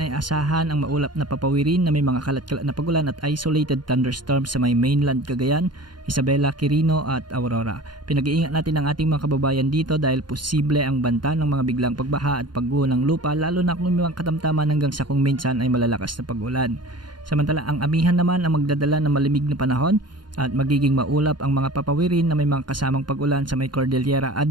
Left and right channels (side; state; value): left; late; 0.71 ms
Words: asahan ang maulap na papawirin na may mga kalat-kalat na pagulan at isolated thunderstorms sa may mainland Cagayan, Isabela, Quirino at Aurora. Pinag-iingat natin ang ating mga kababayan dito dahil posible ang banta ng mga biglang pagbaha at pagguho ng lupa lalo na kung may mga katamtaman hanggang sa kung minsan ay malalakas na pag-ulan. Samantala ang amihan naman ang magdadala ng malamig na panahon at magiging maulap ang mga papawirin na may mga kasamang pag-ulan sa may Cordillera